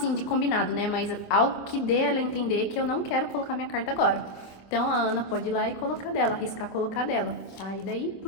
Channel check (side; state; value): right; late; 26 ms